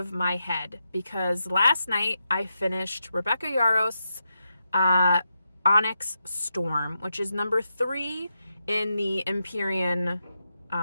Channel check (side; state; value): both; inverted; correlation -0.86